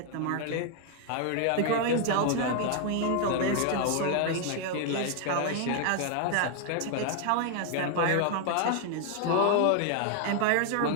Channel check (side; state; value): both; different; correlation 0.00